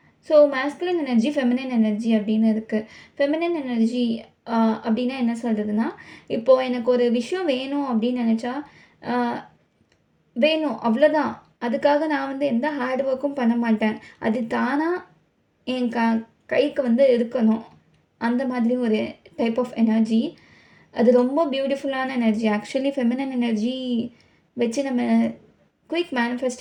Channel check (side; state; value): both; identical; correlation 1.00